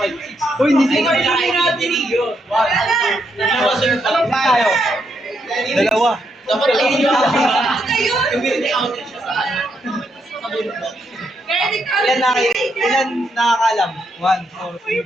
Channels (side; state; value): both; normal; correlation 0.78